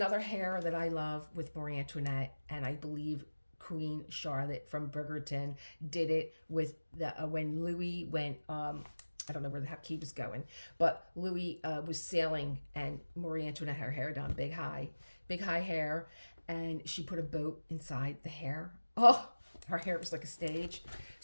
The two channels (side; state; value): both; inverted; correlation -1.00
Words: hair that I love with Marie Antoinette, and I believe Queen Charlotte from Bridgerton did it with the when Louis went. I don't know where the heck he was going, but Louis was sailing, and Marie Antoinette had her hair done big high hair, and she put a boat inside the hair. Oh, her hair was like a stage.